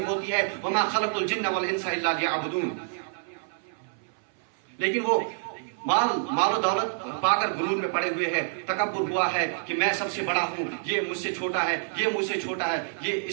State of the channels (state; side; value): silent; left; 57 dB below the other